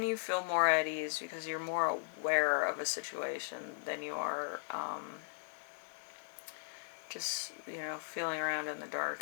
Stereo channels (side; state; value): right; silent; digital silence